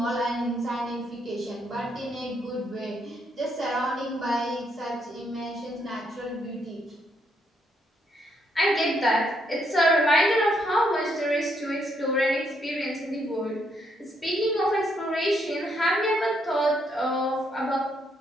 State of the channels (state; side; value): normal; both; correlation 0.74